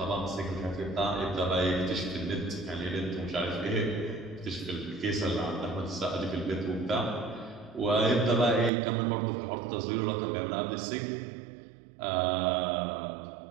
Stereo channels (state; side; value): drops out; left; at 8.7 s